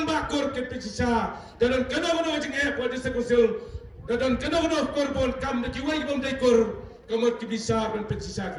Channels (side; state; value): both; identical; correlation 1.00